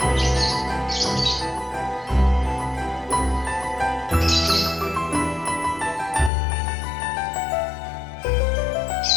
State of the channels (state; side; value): drops out; right; at 6.3 s